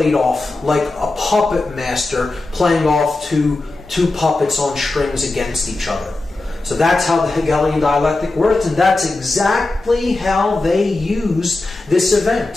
off like a puppet master playing off two puppets on strings against each other. So that's how the Hegelian dialectic works, and that's exactly how they used this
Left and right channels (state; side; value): quieter; right; 3.1 dB